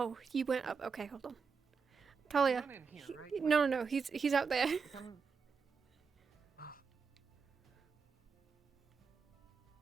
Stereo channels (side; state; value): left; quieter; 5.5 dB